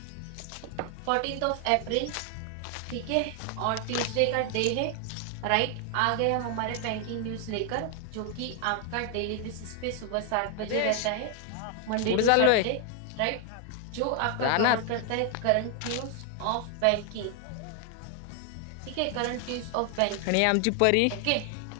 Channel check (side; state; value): both; different; correlation 0.00